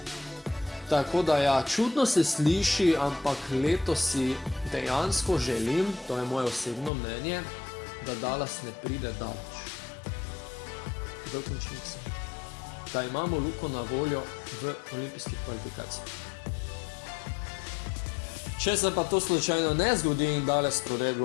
Tako da ja, čudno se sliši, ampak letos si dejansko želim, to je moje osebno mnenje, da Dallas ne pride daleč v končnici. Da imamo Luko na voljo v olimpijskih kvalifikacijah. Če se pa to slučajno ne zgodi in Dallas prode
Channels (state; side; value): drops out; right; at 6.9 s